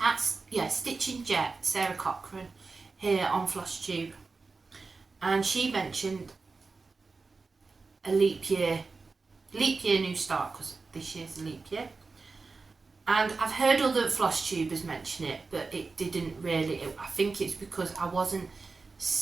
Jet, Sarah Cochran, here on Flosstube, and she mentioned a leap year new start, because this year's a leap year. And I've heard other Flosstubers mention it, but it didn't really. I think it's because I wasn't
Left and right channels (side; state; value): left; quieter; 4.1 dB